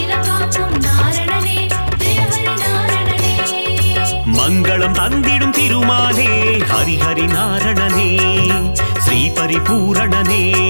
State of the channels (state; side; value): inverted; both; correlation -1.00